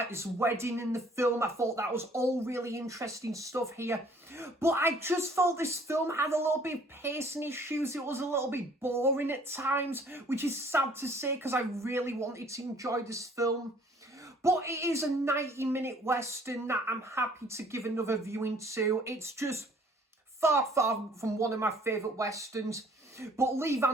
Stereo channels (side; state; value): both; normal; correlation 0.57